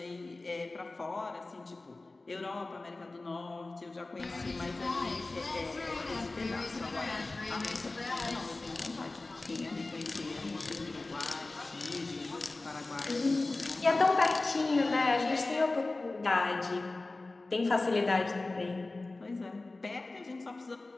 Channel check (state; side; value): quieter; right; 3.2 dB